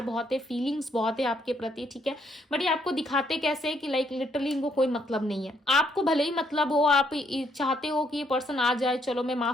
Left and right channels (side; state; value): both; normal; correlation 0.71